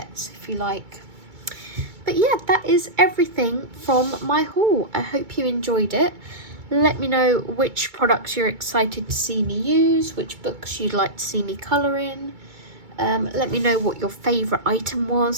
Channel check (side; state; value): left; late; 2.2 ms